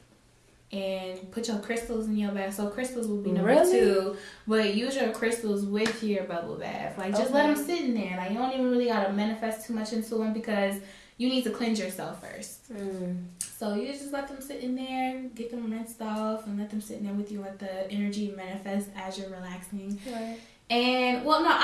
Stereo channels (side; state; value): both; identical; correlation 1.00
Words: and put your crystals in your bath. So crystals will be number 2. But use your crystals with your bubble bath. Like, just let them sit in there. Like, you don't even really got to manifest too much into them because you need to cleanse yourself first. So you just let them sit in there, get them rinsed off, and let them sit in there with you. Let the energy manifest as you're relaxing. Right. And, well, no,